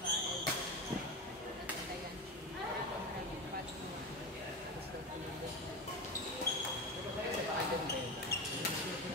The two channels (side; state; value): both; normal; correlation 0.21